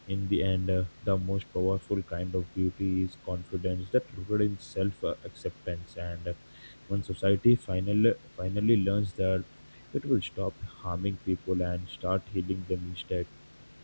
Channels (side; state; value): both; inverted; correlation -1.00